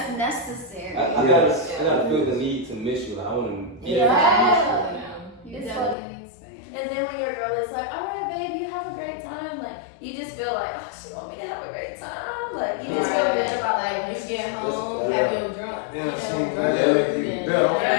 necessary. I gotta feel the need to miss you. Like, I want to be Yeah. You It's definitely need space. And then when your girl is like, all right, babe, you have a great time. Like, you just feel like, oh, she want me to have a great time. Like, you just feel good about like when you get home, Yeah. have your drunk. Yeah, you know, she drunk that make you and- better. I'm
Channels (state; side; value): drops out; right; at 6.0 s